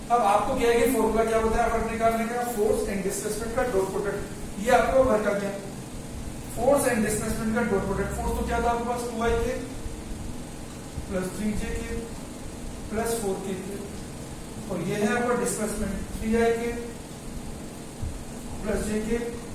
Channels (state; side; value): identical; both; correlation 1.00